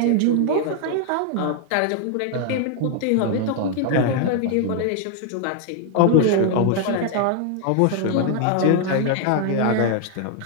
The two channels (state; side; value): different; both; correlation 0.00